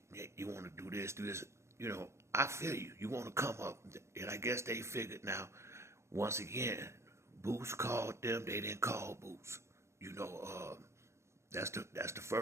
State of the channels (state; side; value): late; left; 0.13 ms